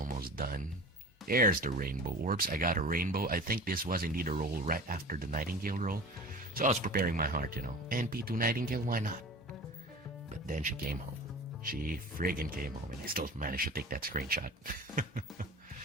done. There's the rainbow orbs. I got a rainbow. I think this was indeed a roll right after the Nightingale roll. So I was preparing my heart, NP2 Nightingale, why not? But then she came home. She friggin' came home, and I still managed to take that screenshot.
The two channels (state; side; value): normal; both; correlation 0.37